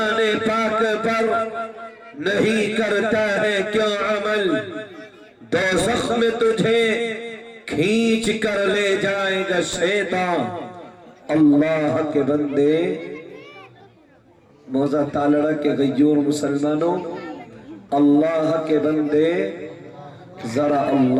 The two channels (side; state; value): both; identical; correlation 1.00